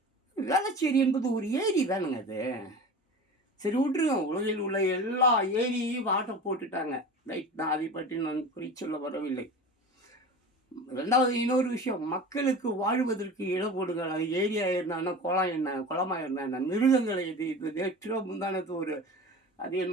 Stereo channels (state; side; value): normal; both; correlation 0.34